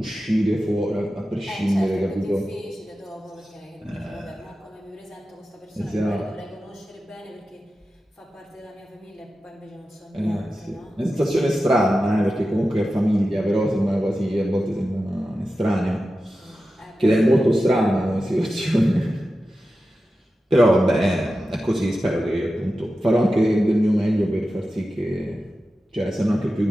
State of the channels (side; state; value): both; normal; correlation 0.93